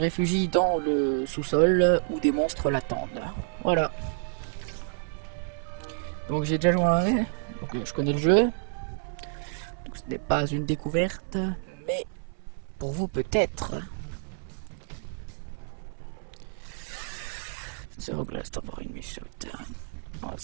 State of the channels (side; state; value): left; silent; 59 dB below the other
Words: dans le sous-sol où des monstres l'attendent. Voilà. Donc j'ai déjà joué à un, donc je connais le jeu. Donc ce n'est pas une découverte, mais pour vous peut-être. Zero glass tambourine me shoot. Voilà,